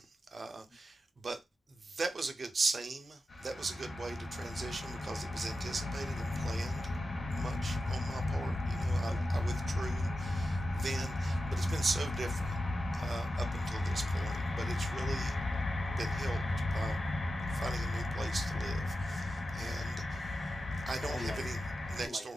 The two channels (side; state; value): both; normal; correlation 0.91